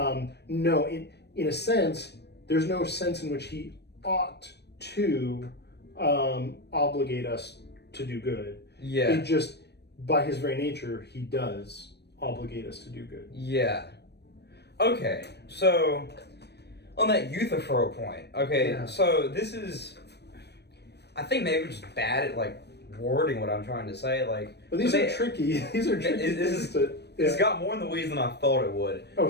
no, in a sense, there's no sense in which he ought to obligate us to do good. Yeah. It just, by his very nature, he does obligate us to do good. Yeah. Okay, so on that Euthyphro point, so this is, I think maybe we're just bad at like wording what I'm trying to say. Like, but these are tricky. These are tricky. It's got more in the weeds than I thought it would. Oh,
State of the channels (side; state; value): right; late; 0.49 ms